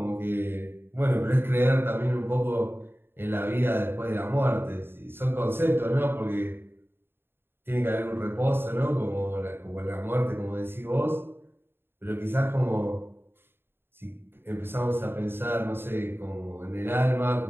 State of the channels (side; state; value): left; late; 0.11 ms